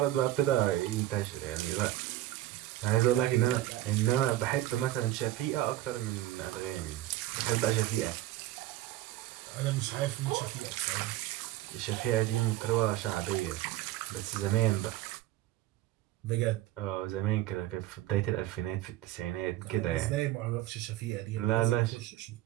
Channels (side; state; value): left; quieter; 14.8 dB